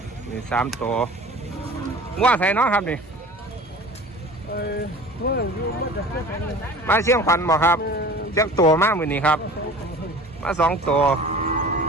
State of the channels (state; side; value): normal; both; correlation 0.42